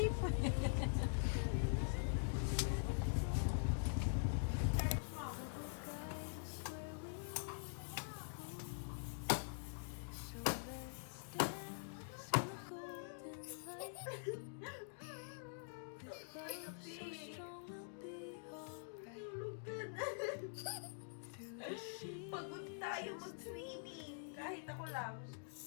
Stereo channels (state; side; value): silent; right; digital silence